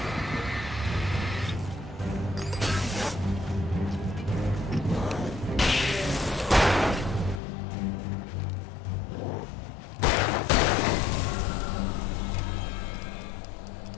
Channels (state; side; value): drops out; right; at 7.4 s